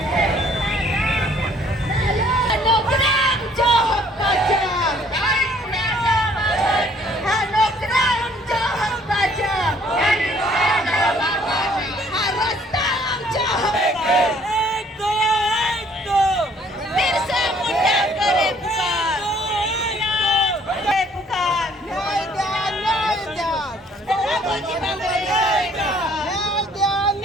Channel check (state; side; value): normal; both; correlation 0.60